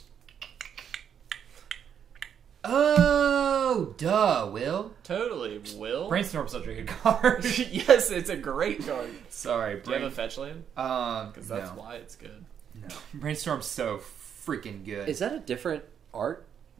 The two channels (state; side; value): quieter; left; 8.3 dB